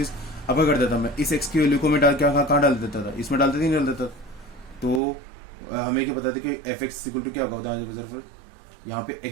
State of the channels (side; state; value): left; drops out; at 5.0 s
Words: अब क्या कर देता मैं, इस x की वैल्यू को मैं डाल क्या कहाँ डाल देता था, इसमें डालते नहीं डाल देता, तो हमें क्या पता था कि एफ एक्स इक्वल टू क्या होता है, फिर यहाँ पे